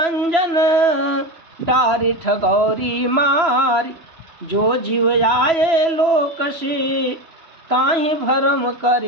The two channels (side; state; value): left; late; 3.0 ms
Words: डारी ठगौरी मारी, जो जीव आए लोक से, ताहि भरम